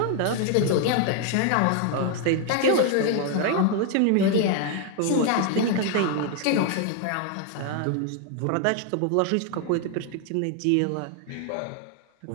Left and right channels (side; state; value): both; different; correlation 0.00